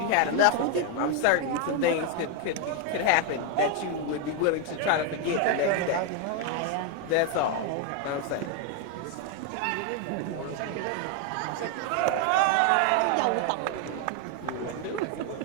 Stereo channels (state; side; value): different; both; correlation 0.01